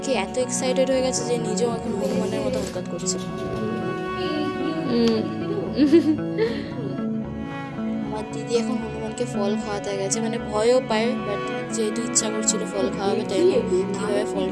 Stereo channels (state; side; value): identical; both; correlation 1.00